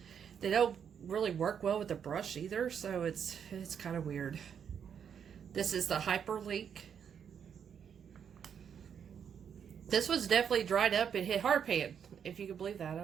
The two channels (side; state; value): left; quieter; 7.8 dB